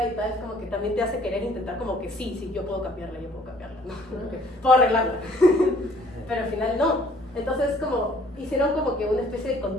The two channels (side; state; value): both; normal; correlation 0.58